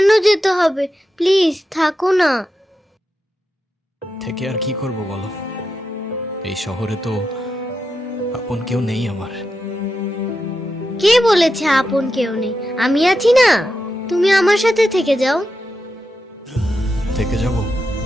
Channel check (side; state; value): both; normal; correlation 0.88